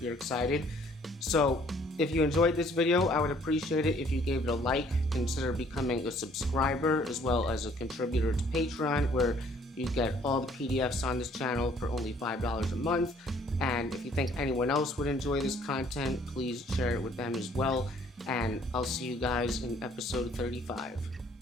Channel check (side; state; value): both; normal; correlation 0.60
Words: excited. So if you enjoyed this video, I would appreciate it if you gave it a like, consider becoming a subscriber as well as a contributor to Patreon, where you get all the PDFs on this channel for only $5 a month. And if you think anyone else would enjoy this content, please share it with them as well. And I'll see you guys in episode 35.